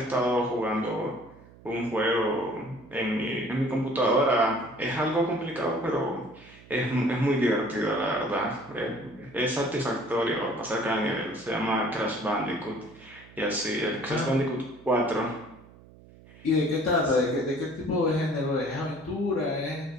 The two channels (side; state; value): right; noise; hum, 22 dB below the sound